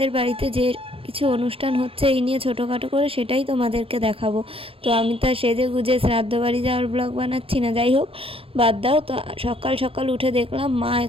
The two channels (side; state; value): left; late; 0.27 ms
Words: বাড়িতে যে কিছু অনুষ্ঠান হচ্ছে এই নিয়ে ছোটোখাটো করে, সেটাই তোমাদেরকে দেখাবো। তো আমি তো সেজে গুজে শ্রাদ্ধ বাড়ি যাওয়ার ব্লগ বানাচ্ছি না, যাই হোক বাদ দাও। তো সকাল সকাল উঠে দেখলাম মা